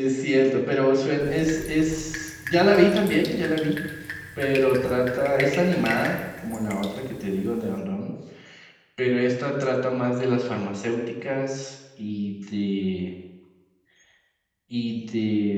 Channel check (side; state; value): both; identical; correlation 1.00